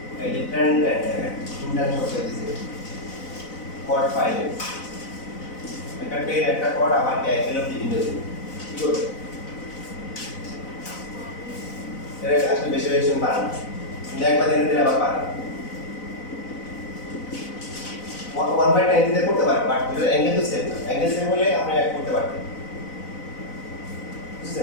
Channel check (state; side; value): late; right; 4.0 ms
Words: এই যে ট্রেন্ড দেখেন ইন্টার শব্দ দিয়েছে কোড ফাইলে একটা টের একটা কোড আবার কি একদম বিভিন্ন দিন কি করবে এর আসলে বেশি বেশি পারেন না একবার দিনে আবার পারেন 1/10 দিতে করতে পারেন বাট এটা অ্যাঙ্গেল তো সেম অ্যাঙ্গেল সেম হলে আপনি এক করতে পারবেন